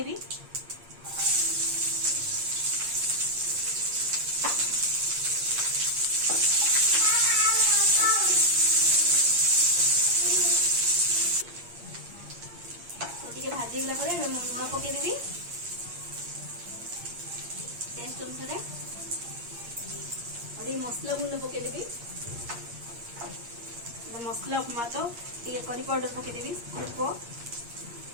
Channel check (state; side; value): late; left; 8.6 ms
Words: भाजी गला लुण पकईदेवी टेस्ट अनुसार और मसला गुंड पकईदेवी मसला उपमा तो टे करी पाउडर पकईदेवी अल्प